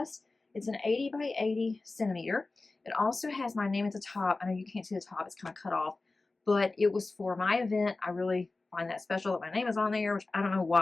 It's an 80 by 80 centimeter. It also has my name at the top. I know you can't see the top, it's kind of cut off, but it was for my event. I really find that special that my name is on there, which I don't know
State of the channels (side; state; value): right; quieter; 3.4 dB